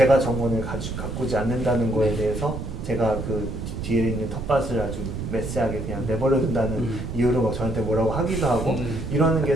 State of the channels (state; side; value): noise; right; rumble, 6 dB below the sound